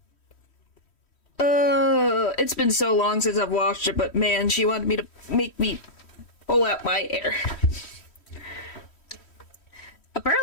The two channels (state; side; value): late; right; 3.1 ms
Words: It's been so long since I've watched it, but man, she wanted me to make me pull out my hair.